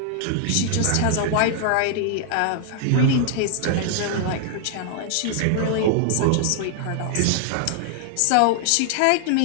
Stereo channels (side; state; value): both; different; correlation 0.00